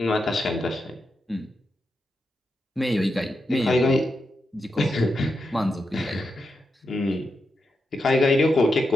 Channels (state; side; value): normal; both; correlation 0.86